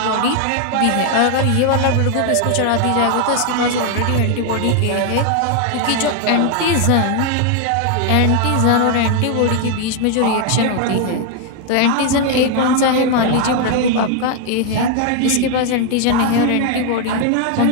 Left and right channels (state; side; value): different; both; correlation 0.01